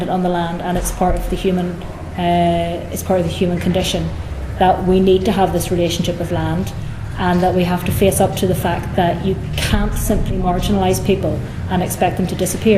on the land, and it's part of the human condition that we need to have this relationship with land, and that we have to face up to the fact that you can't simply marginalise people and expect them to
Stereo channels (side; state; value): both; identical; correlation 1.00